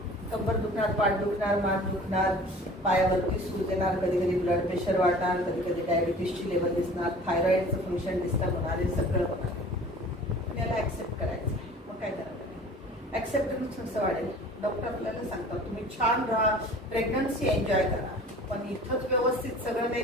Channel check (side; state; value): both; normal; correlation 0.45